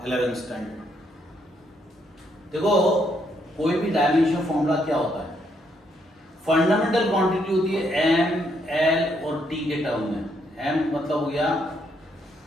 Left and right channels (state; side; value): normal; both; correlation 0.74